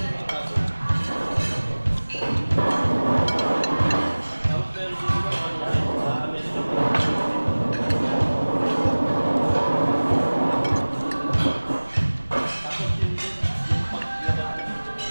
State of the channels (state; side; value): inverted; both; correlation -1.00